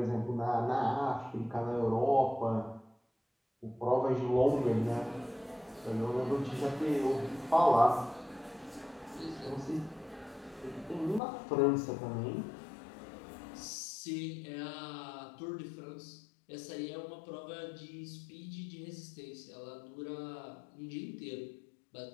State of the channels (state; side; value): drops out; right; at 11.2 s